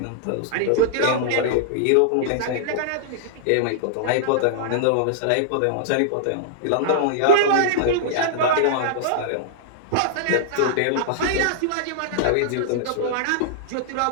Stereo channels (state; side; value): different; both; correlation -0.01